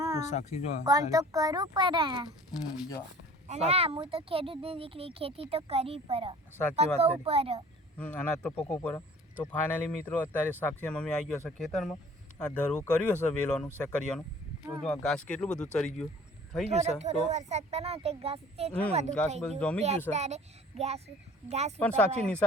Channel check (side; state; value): both; normal; correlation 0.49